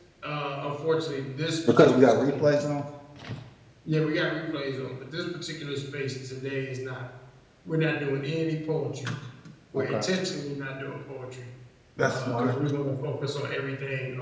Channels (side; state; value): both; identical; correlation 1.00